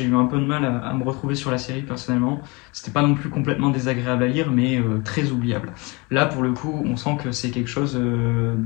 eu un peu de mal à me retrouver sur la série personnellement. C'était pas non plus complètement désagréable à lire, mais très oubliable. Là, pour le coup, on sent que c'est quelque chose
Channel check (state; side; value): quieter; right; 27.0 dB